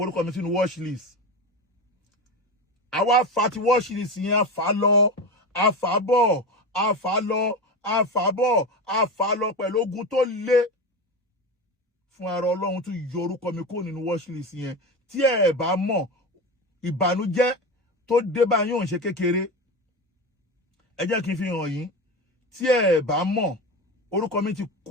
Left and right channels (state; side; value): normal; both; correlation 0.23